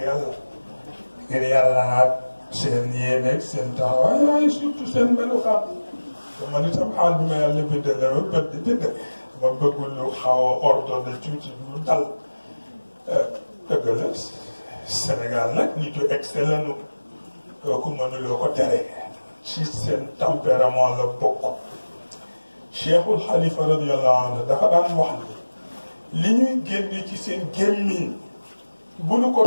yàlla ngir yàlla ak seen yéene seen taxawaay waaye surtout seen melukaan te man itam xaal bi ma yàlla bindal la ba bët di bind ma bëggul lu xaw a ordonné tuuti lu dal dëgg la Sénégal nag nitu excellent nu kooku mënuloo ko tere ci seen tempérament la bokk. Cheikhul Xalifa radiyallahu anhu dafa daan wax ni li ñuy génne ci seen gémmiñ bu nu ko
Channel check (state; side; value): inverted; both; correlation -1.00